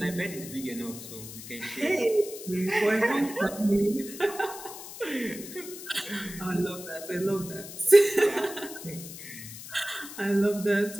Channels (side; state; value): left; noise; hiss, 12 dB below the sound